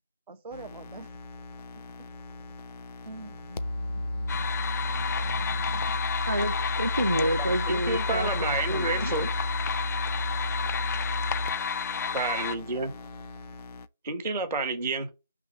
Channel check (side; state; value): both; inverted; correlation -0.53